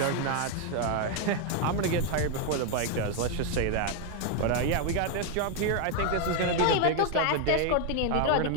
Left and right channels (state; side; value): different; both; correlation 0.01